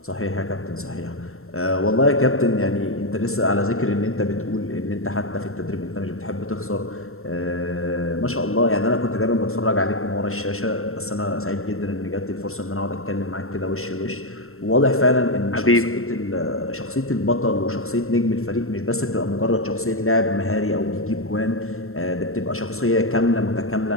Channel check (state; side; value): late; right; 0.62 ms